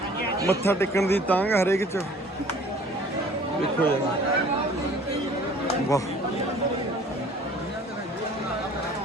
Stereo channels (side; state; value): both; normal; correlation 0.51